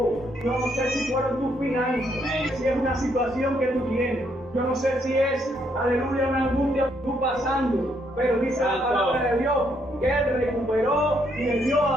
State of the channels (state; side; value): normal; both; correlation 0.73